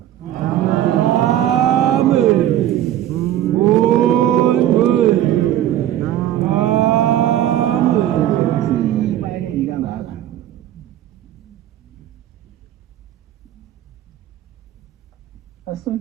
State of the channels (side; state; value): left; quieter; 12.3 dB